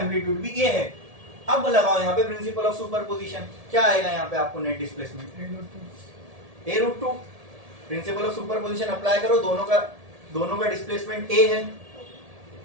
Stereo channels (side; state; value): left; late; 1.7 ms